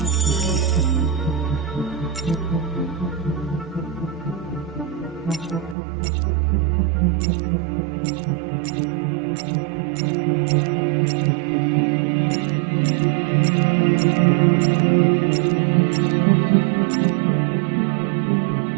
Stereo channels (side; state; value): left; drops out; at 5.8 s